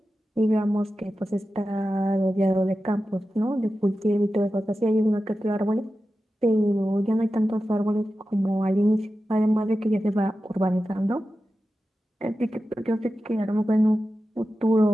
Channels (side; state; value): both; normal; correlation 0.93